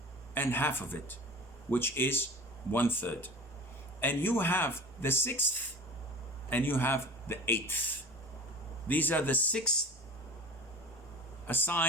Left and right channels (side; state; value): both; normal; correlation 0.38